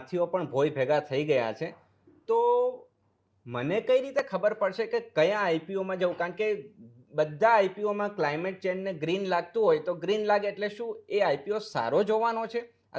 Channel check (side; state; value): both; identical; correlation 1.00